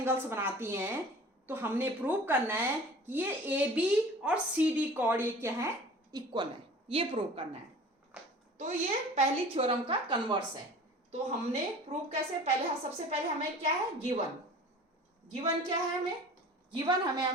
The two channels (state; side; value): normal; both; correlation 0.43